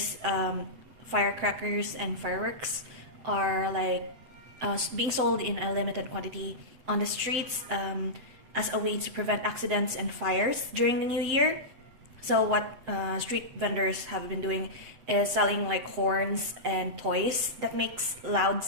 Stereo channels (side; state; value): left; late; 8.1 ms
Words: firecrackers and fireworks are like being sold in a limited quantity on the streets as a way to prevent accidents and fires during the new year. So what street vendors have been doing is selling like horns and toys that makes loud